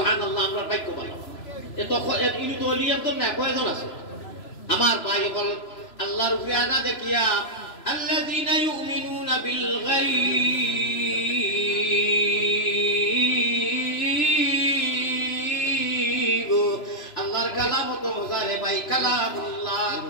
আমরা বাক্য বলা এত ইনি তো অলি একজন না কয়জন আছে আমার ভাই বল আল্লাহর উপরে আদা দেখিয়া আল্লাযীনা ইউমিনুনা বিল গায়ব আল্লাহর কালাম তো মজারে ভাই কালামুল্লাহ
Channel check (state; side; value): late; right; 3.0 ms